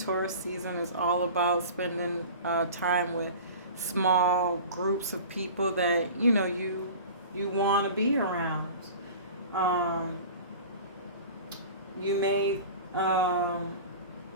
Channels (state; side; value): inverted; both; correlation -0.38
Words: season is all about spending time with small groups of people that you want to be around. You may